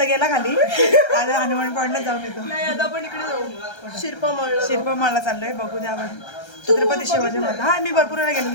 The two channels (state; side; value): late; right; 1.3 ms